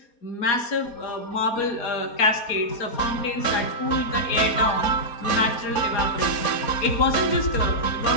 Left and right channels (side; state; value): right; late; 4.3 ms